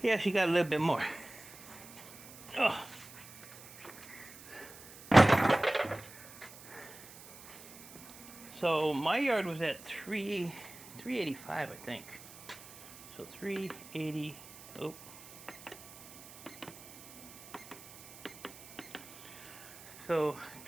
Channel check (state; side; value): noise; right; hiss, 18 dB below the sound